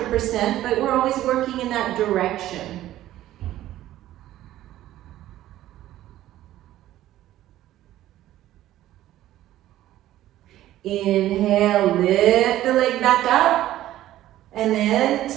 but we're always working in that direction. Inhale, lift the leg back up. And then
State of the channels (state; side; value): quieter; left; 13.9 dB